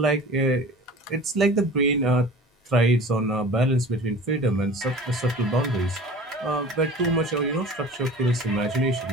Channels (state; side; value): normal; both; correlation 0.40